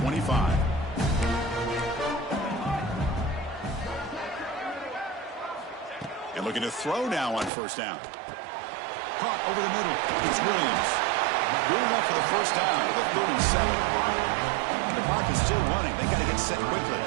And looking to throw now on first down. Caught over the middle. It's Williams. Good enough for the first down to the 37. The clock is still running. They got to get set quickly.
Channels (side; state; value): left; drops out; at 7.5 s